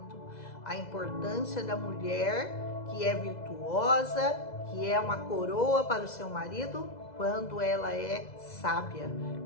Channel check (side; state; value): right; late; 2.0 ms